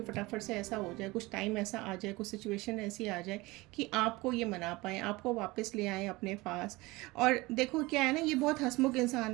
फटाफट से ऐसा हो जाए, कुछ टाइम ऐसा आ जाए, कुछ सिचुएशन ऐसी आ जाए कि आपको ये मना पाएँ, आपको वापस ले आएँ अपने पास। और देखो क्या है ना, ये बहुत हंसमुख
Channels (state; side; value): quieter; left; 21.8 dB